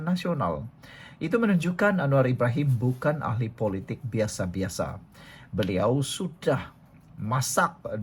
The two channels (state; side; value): identical; both; correlation 1.00